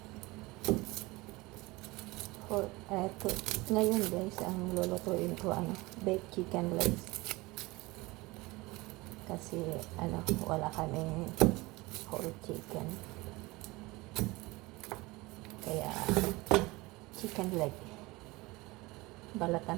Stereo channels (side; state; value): left; quieter; 22.1 dB